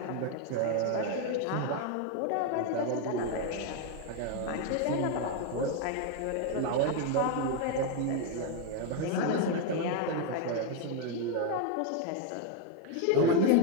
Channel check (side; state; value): both; different; correlation 0.01